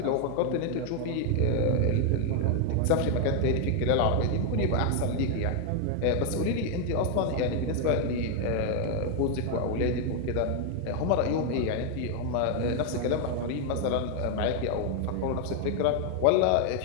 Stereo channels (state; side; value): different; both; correlation 0.01